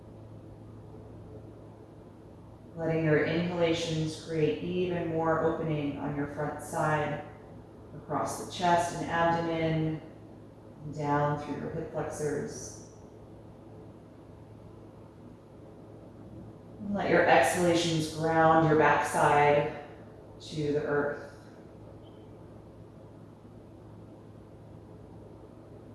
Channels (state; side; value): identical; both; correlation 1.00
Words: Letting your inhalations create even more opening on your front side, across the chest and abdomen, and down through your hip flexors. And let your exhalations ground your backside to the earth.